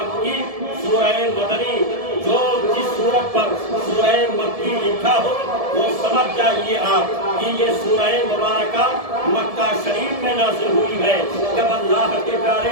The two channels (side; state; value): left; late; 1.7 ms